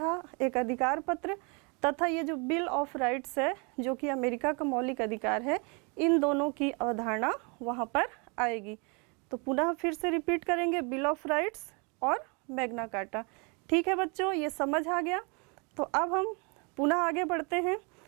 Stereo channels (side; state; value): left; quieter; 32.5 dB